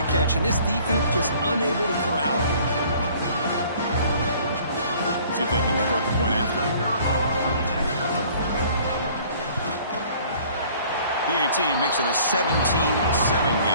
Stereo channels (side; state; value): both; inverted; correlation -0.54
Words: catch. And this defense just unable to corral him. See if they can convert the point after. PAT makes it a 17-7